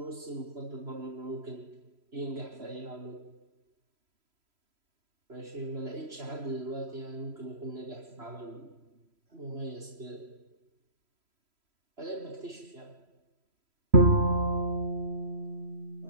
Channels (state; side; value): late; left; 3.0 ms